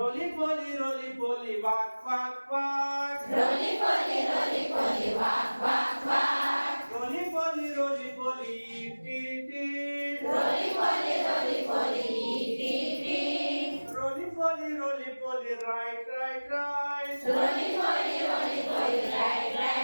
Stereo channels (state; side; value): inverted; both; correlation -1.00